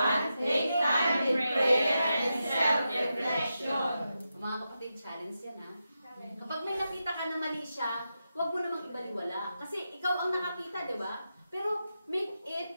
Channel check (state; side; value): inverted; both; correlation -0.88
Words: take time in prayer and self-reflection. Mga kapatid, challenge yan ha. Kapag may nakita ka na mali siya, huwag mo namang ibaliwala. Kasi ikaw ang nakakita, di ba? Pero make